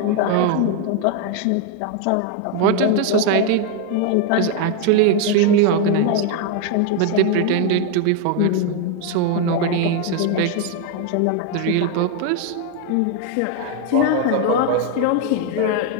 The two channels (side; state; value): both; different; correlation 0.01